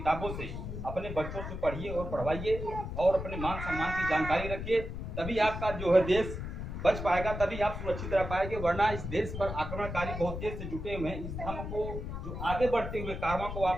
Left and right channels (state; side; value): noise; left; rumble, 6 dB below the sound